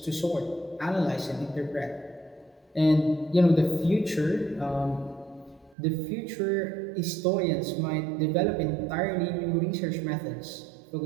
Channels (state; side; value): drops out; left; at 5.8 s